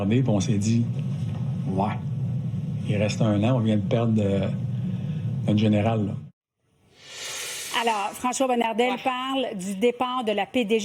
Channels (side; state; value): both; identical; correlation 1.00